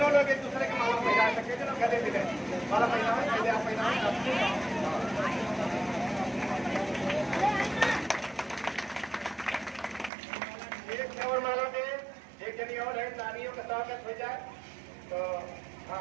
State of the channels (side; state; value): left; drops out; at 10.1 s